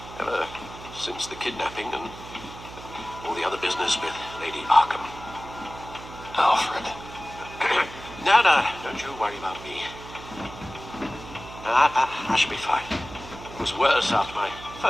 Ever since the kidnapping and all the other business with Lady Arkham. Alfred. No, don't you worry about me. I should be fine. It was worse after my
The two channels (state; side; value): noise; right; hum, 15 dB below the sound